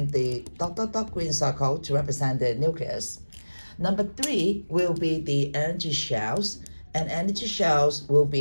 the dot dot dot green circle to represent the nucleus. Number 3 will be the energy shells, and energy shells will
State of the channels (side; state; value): both; inverted; correlation -1.00